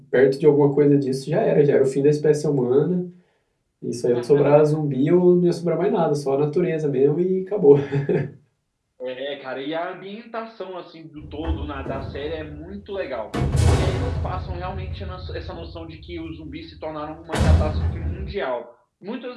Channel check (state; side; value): identical; both; correlation 1.00